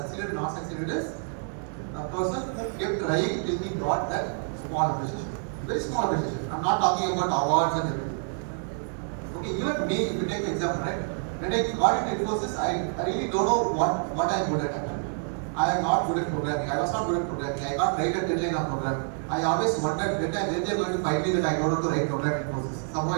and not succeeded is a person who kept trying till he got that small appreciation. Very small appreciation. I'm not talking about awards and everything. Okay, even me, if you take an example, right? When I got into Infosys, I really don't know what I'm good at actually. I am not good at programming. I was not good at programming. I can't write a deadline of program. I always wondered when they're going to find me that I don't know to write program in Infosys. Somehow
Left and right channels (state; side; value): silent; left; 57 dB below the other